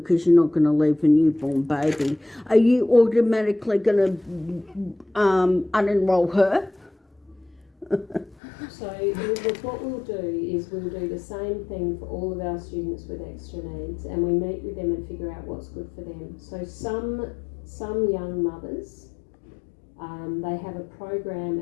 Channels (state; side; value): drops out; right; at 8.3 s